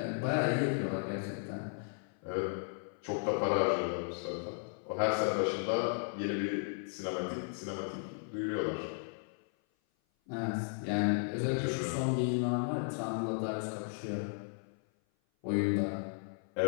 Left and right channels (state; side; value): silent; right; 54 dB below the other